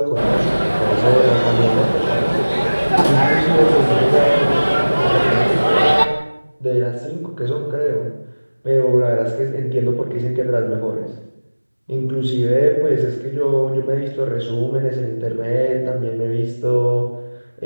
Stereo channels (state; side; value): inverted; both; correlation -1.00